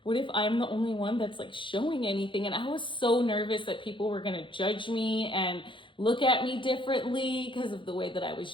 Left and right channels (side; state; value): right; late; 0.24 ms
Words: I'm the only one that's like showing anything? And I was so nervous that people were gonna judge me and look at me differently because of the way that I